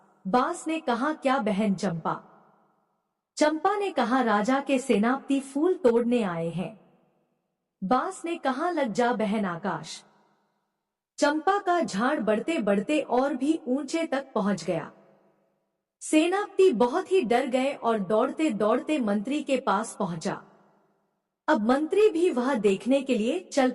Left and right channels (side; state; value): both; identical; correlation 1.00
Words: बांस ने कहा, क्या बहन चंपा? चंपा ने कहा, राजा के सेनापति फूल तोड़ने आए हैं। बांस ने कहा, लग जा बहन आकाश। चंपा का झाड़ बढ़ते बढ़ते और भी ऊंचे तक पहुंच गया। सेनापति बहुत ही डर गए और दौड़ते दौड़ते मंत्री के पास पहुंचा। अब मंत्री भी वह देखने के लिए चल